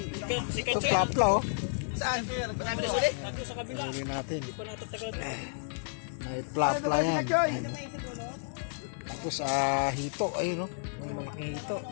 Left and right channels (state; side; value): silent; right; 57 dB below the other